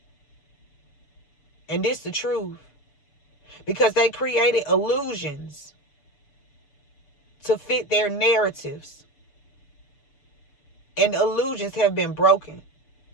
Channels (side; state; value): right; late; 6.9 ms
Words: And this the truth. Because they created illusions to fit their narratives. And illusions have been broken.